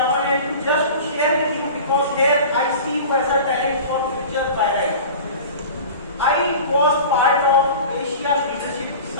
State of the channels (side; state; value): both; inverted; correlation -0.37